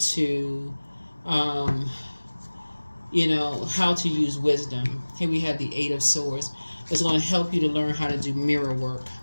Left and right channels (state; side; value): inverted; both; correlation -1.00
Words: how to use wisdom. Here we have the Eight of Swords. It's going to help you to learn how to do mirror work